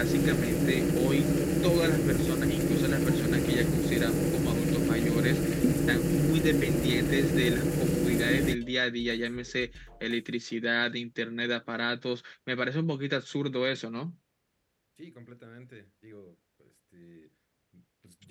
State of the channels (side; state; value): both; identical; correlation 1.00